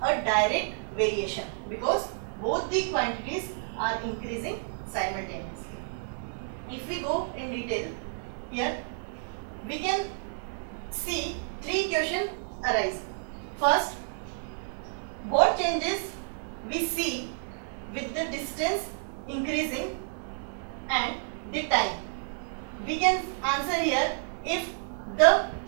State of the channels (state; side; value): silent; left; 58 dB below the other